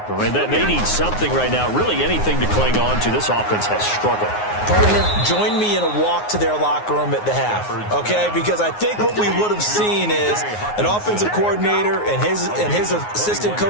I mean, they need something right now, really anything to cling on to. This offense has struggled. Partner, join me in a walk to their locker room at the half, okay? Because I think what we would have seen is an offensive coordinator and his assistant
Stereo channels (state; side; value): late; right; 9.6 ms